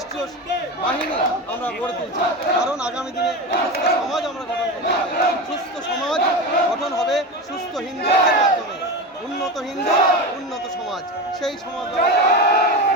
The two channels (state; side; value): normal; both; correlation 0.23